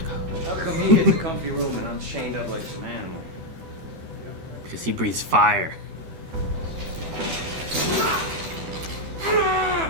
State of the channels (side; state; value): left; late; 12 ms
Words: How come he gets a comfy room and I'm chained up like some animal? Because he breathes fire.